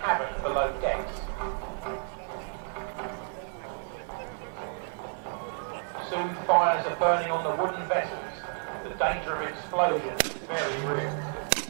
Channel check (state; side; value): silent; left; 57 dB below the other